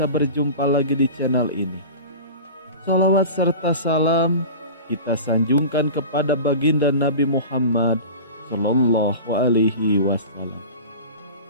berjumpa lagi di channel ini. Salawat serta salam kita sanjungkan kepada baginda Nabi Muhammad sallallahu alaihi wasallam.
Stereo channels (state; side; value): inverted; both; correlation -0.34